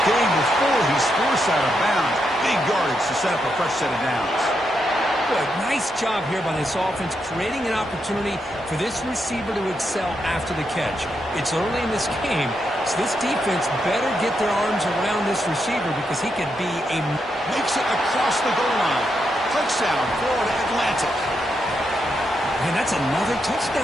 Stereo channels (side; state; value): both; normal; correlation 0.82